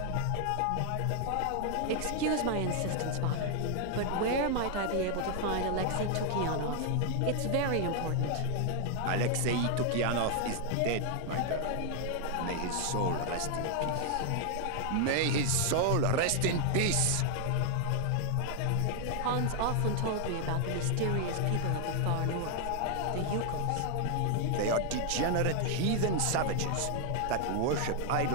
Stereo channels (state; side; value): different; both; correlation 0.00